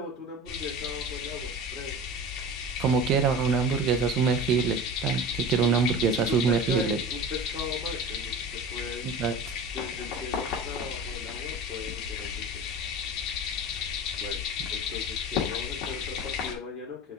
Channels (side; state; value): both; normal; correlation 0.34